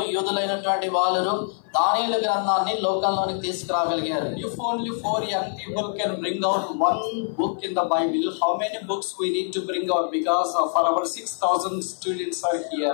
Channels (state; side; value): silent; right; 56 dB below the other